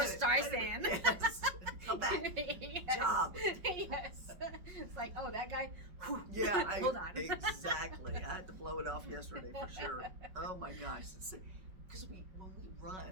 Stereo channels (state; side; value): late; left; 5.5 ms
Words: wait a minute. Streisand. Yes. Come back. Yes. Job. Yes. It's like, oh, that guy. Whew. Yeah, Hold on. exactly. I had to blow it off yesterday for sure. Oh my gosh. Because when